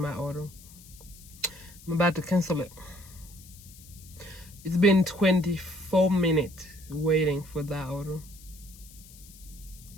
order. I'm about to cancel it. It's been 24 minutes waiting for that order.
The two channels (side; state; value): left; noise; hiss, 21 dB below the sound